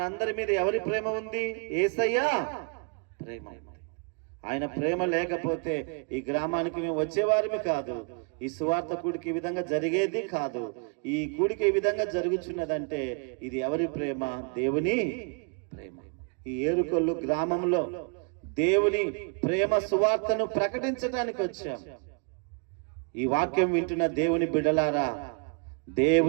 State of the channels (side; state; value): left; quieter; 38.4 dB